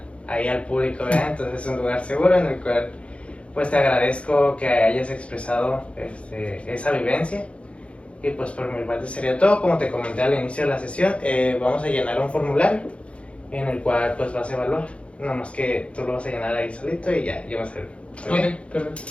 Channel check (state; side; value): late; right; 0.061 ms